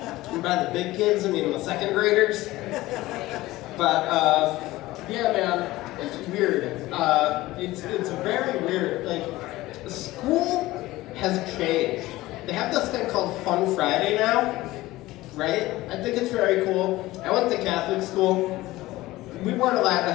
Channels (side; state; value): right; quieter; 18.0 dB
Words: by the big kids, I mean the second graders. But yeah, man, it's weird. It's very weird. Like, school has changed. They have this thing called Fun Friday now, right? I think it's very cool. I went to Catholic school. We weren't allowed to